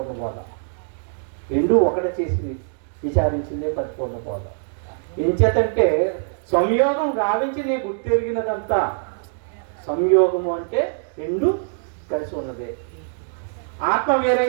బోధ. 2 ఒకటి చేసి విచారించిందే పరిపూర్ణ బోధ. ఎంచేతంటే సంయోగం గావించి నీ గుర్తెరిగినదంతా. సంయోగము అంటే 2 కలిసి ఉన్నదే. ఆత్మ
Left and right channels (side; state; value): left; silent; digital silence